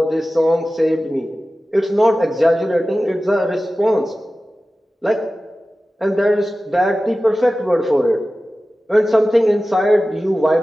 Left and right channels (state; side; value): normal; both; correlation 0.95